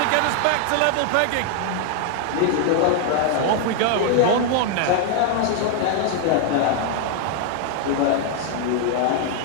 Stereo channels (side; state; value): both; different; correlation 0.00